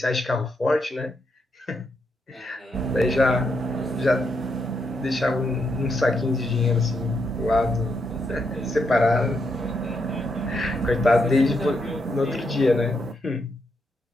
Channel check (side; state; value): both; normal; correlation 0.80